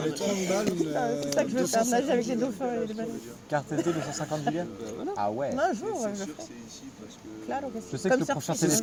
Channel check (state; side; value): identical; both; correlation 1.00